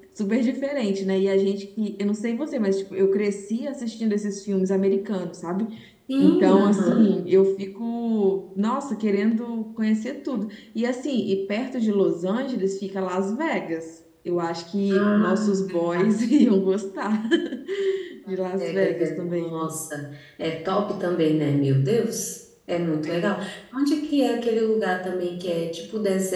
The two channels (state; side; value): identical; both; correlation 1.00